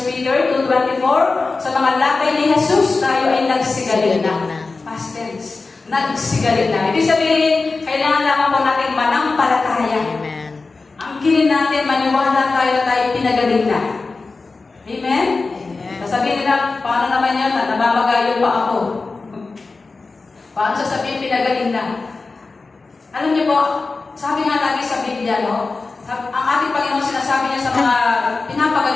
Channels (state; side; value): quieter; right; 3.9 dB